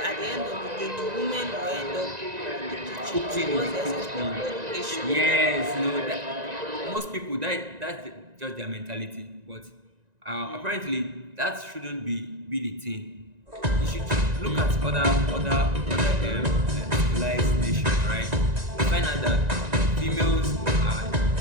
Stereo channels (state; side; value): late; left; 1.9 ms